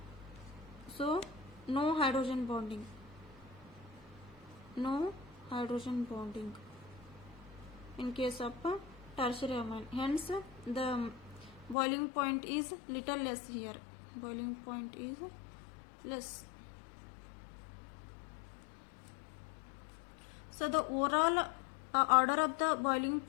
So, no hydrogen bonding. No hydrogen bonding in case of tertiary amine. Hence, the boiling point is little less here. Boiling point is less. So, the overall order of the boiling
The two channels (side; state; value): right; drops out; at 11.8 s